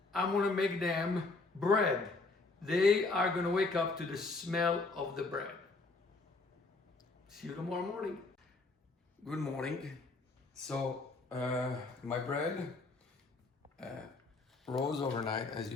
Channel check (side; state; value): right; quieter; 3.5 dB